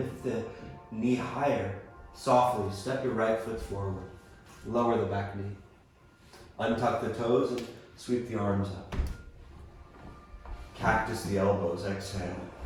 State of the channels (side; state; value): both; identical; correlation 1.00